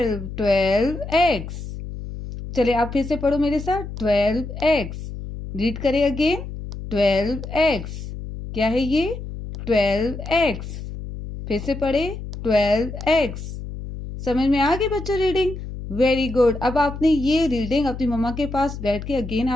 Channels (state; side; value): noise; left; hum, 9 dB below the sound